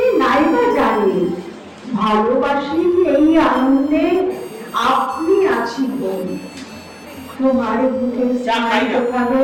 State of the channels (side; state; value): both; identical; correlation 1.00